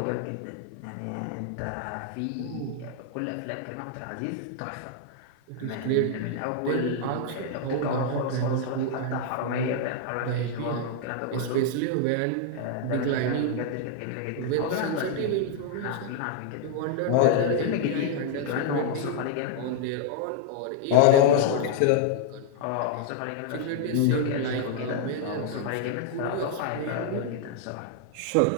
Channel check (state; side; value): different; both; correlation 0.00